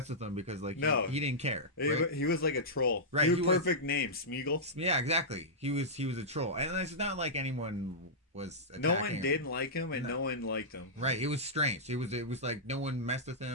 with him because he didn't care. Right? He was like a troll. Right. He was perfect name, Smeagol. Yeah, exactly. He was a troll, and it's not like anyone was attacking no one him. didn't like him, and no one liked him. Right. It was strange. It was like no one messed with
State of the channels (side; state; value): both; normal; correlation -0.12